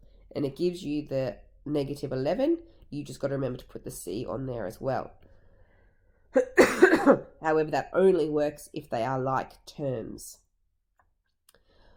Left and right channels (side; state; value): both; identical; correlation 1.00